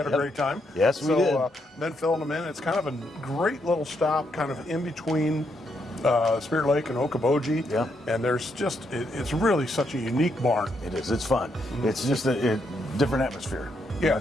a great time. Yes, we did. Then filling them in. It's kind of a great little stop, kind of in between Spirit Lake and Okoboji. Yeah. And there's just, it's really such a unique barn. It is. It's fun. It's just a different atmosphere. Yeah.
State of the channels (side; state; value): both; normal; correlation 0.78